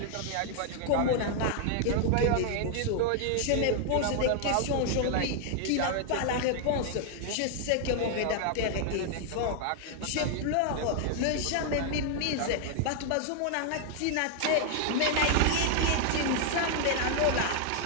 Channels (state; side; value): different; both; correlation 0.00